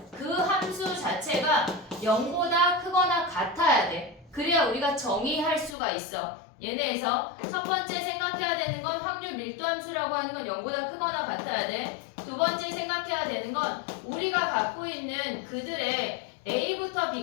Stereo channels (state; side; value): drops out; right; at 5.8 s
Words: 그 함수 자체가 0보다 크거나 같아야 돼. 그래야 우리가 정의할 수가 있어. 얘네에서 첫 번째 생각해야 되는 건 확률 밀도 함수라고 하는 건 0보다 크거나 같아야 돼. 두 번째 생각해야 되는 건 우리가 갖고 있는 그들의 A부터